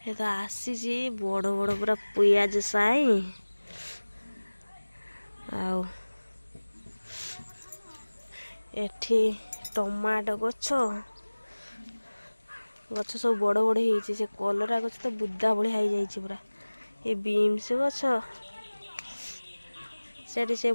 ये तो आसी बड़ बड़ पूरा पियाज साई एठी टमाटो गछ गछ सब बड़ बड़ हो कलरा गछ तो बुदा भाया हो जाए पूरा ये बीन्स गछ से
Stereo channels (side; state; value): both; inverted; correlation -1.00